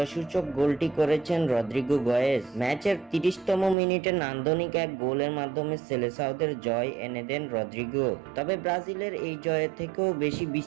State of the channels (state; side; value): drops out; left; at 3.8 s